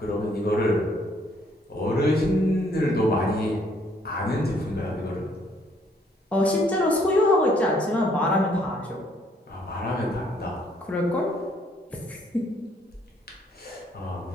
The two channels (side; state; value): both; normal; correlation 0.66